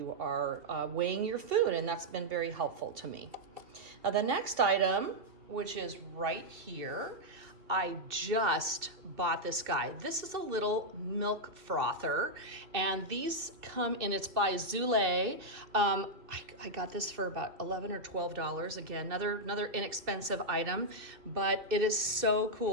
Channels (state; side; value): late; left; 2.6 ms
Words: are weighing your food, and that's been very helpful to me. Now the next item, which is right here, I just bought this guy. This is a little milk frother, and these come in, it's by Zule. I got this for about $11 or $12. Again, another inexpensive item, but it is so